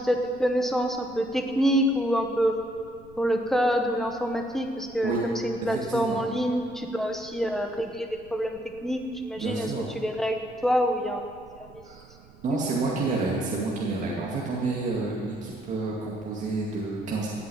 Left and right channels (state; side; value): noise; right; rumble, 23 dB below the sound